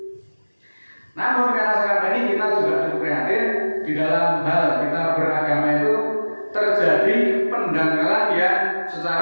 Namun karena sekarang ini kita juga cukup prihatin di dalam hal kita beragama itu terjadi pendangkalan yang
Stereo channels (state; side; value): inverted; both; correlation -1.00